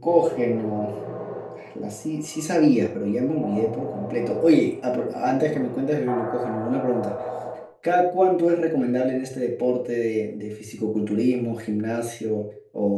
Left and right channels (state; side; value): identical; both; correlation 1.00